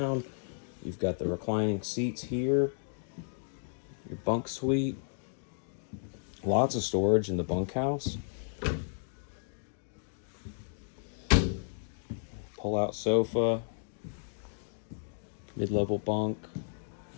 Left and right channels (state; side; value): silent; right; digital silence